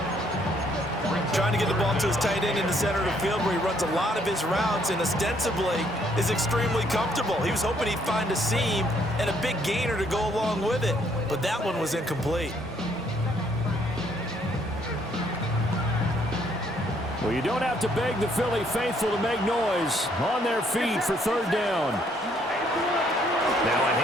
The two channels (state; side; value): normal; both; correlation 0.67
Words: Trying to get the ball to his tight end in the center of the field where he runs a lot of his routes and ostensibly is extremely comfortable. He was hoping he'd find a seam and a big gainer to go along with it, but that one was incomplete. Well, you don't have to beg the Philly faithful to make noise. On their feet for 3rd down. Now a